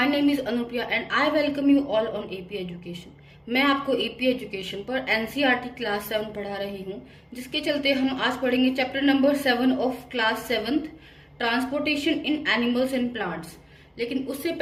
name is Anupriya and I welcome you all on AP education. मैं आपको एपी एजुकेशन पर एनसीईआरटी क्लास 7 पढ़ा रही हूँ, जिसके चलते हम आज पढ़ेंगे chapter number 7 of class 7th, transportation in animals and plants. लेकिन उससे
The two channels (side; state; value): both; identical; correlation 1.00